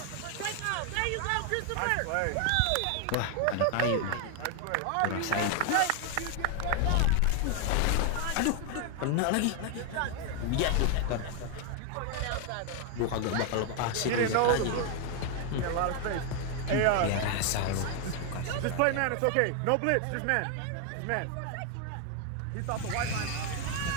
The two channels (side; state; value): both; different; correlation 0.01